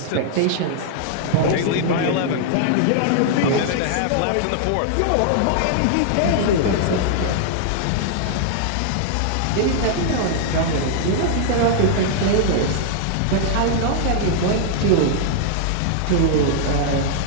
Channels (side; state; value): both; different; correlation -0.01